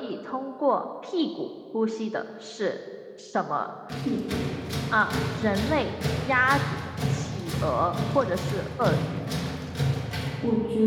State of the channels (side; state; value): both; identical; correlation 1.00